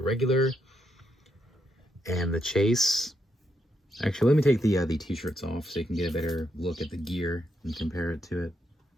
and the Chase. Actually, let me take the t-shirts off so you can get a better look at the gear and compare it to it.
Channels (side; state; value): both; normal; correlation 0.80